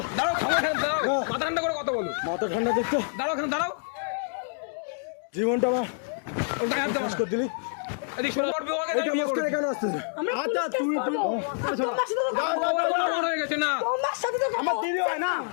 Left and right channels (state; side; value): silent; right; digital silence